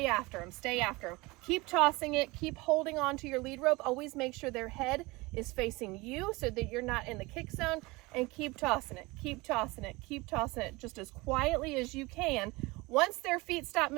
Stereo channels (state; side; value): quieter; left; 23.2 dB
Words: after them, stay after them. Keep tossing it, keep holding on to your lead rope. Always make sure their head is facing you so that you're not in the kick zone, and keep tossing it, keep tossing it, keep tossing it, just as quietly as you can. Once their feet stop